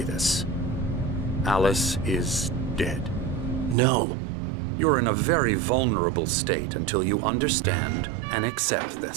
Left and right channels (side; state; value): left; drops out; at 3.8 s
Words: this. Alice is dead. No. You're in a very vulnerable state until you understand and accept